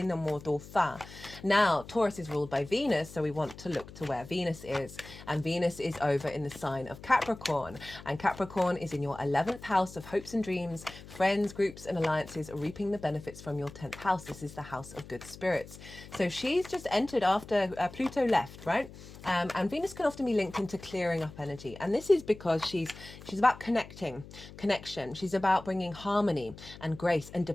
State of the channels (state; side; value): noise; left; hum, 16 dB below the sound